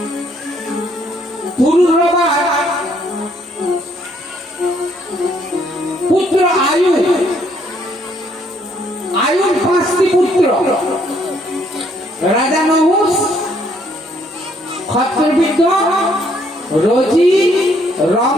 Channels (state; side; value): normal; both; correlation 0.68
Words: পুরুরবা পুত্র আয়ু, আয়ুর 5টি পুত্র, রাজা নহুষ, ক্ষত্রবিদ্য, রচি,